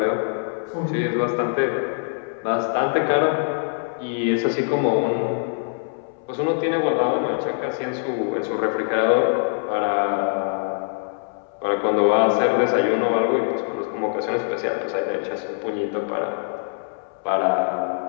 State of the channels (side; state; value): right; silent; 63 dB below the other